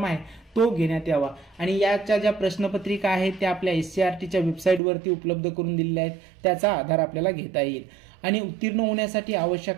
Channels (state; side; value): drops out; left; at 4.8 s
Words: आहे तो घेण्यात यावा आणि याच्या ज्या प्रश्नपत्रिका आहेत त्या आपल्या SCERTच्या वेबसाईटवरती उपलब्ध करून दिलेल्या आहेत, त्याचा आधार आपल्याला घेता येईल. आणि उत्तीर्ण होण्यासाठी